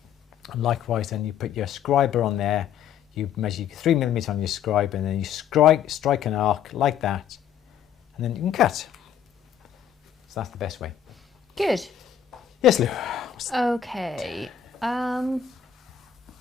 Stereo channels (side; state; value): right; quieter; 9.0 dB